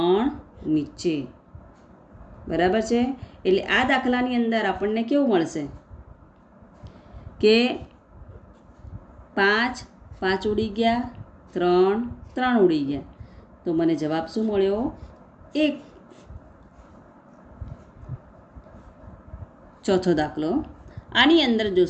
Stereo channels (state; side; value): identical; both; correlation 1.00